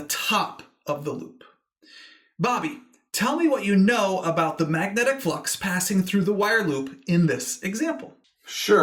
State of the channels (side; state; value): both; identical; correlation 1.00